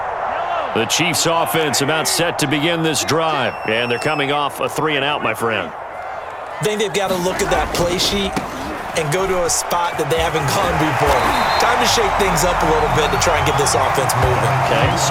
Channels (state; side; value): identical; both; correlation 1.00